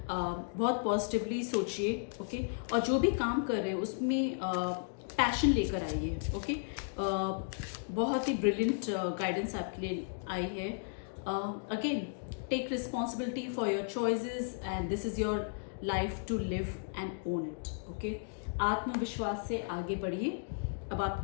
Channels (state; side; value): silent; right; digital silence